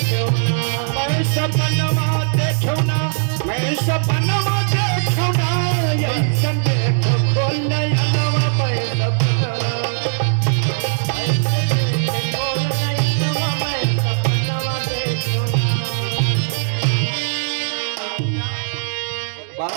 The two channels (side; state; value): left; silent; digital silence